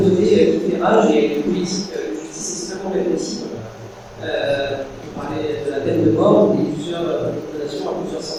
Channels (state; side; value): identical; both; correlation 1.00